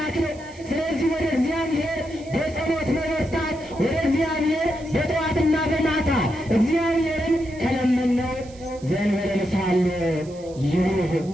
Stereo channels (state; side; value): noise; right; hiss, 24 dB below the sound